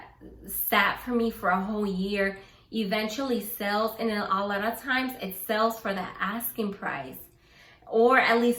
sat for me for a whole year eventually sells, and a lot of times it sells for the asking price, or at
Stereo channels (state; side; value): identical; both; correlation 1.00